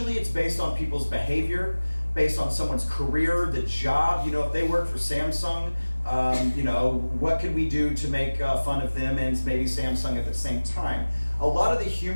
it's based on people's behavior, based on someone's career, the job. You know, if they work for Samsung, you know, what could we do to make fun of them and maybe Samsung at the same time? A lot of the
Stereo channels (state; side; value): inverted; both; correlation -1.00